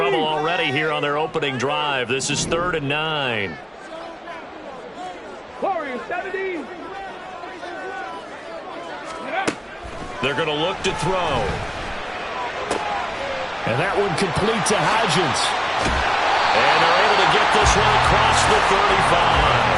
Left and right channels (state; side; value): identical; both; correlation 1.00